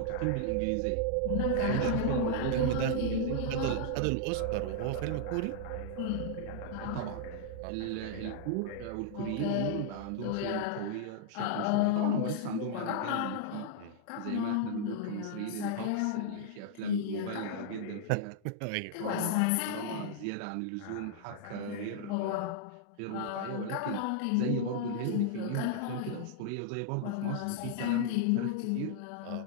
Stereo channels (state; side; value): different; both; correlation -0.01